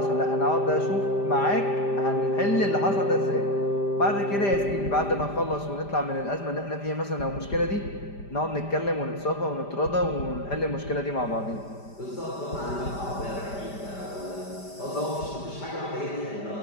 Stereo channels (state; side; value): late; right; 5.0 ms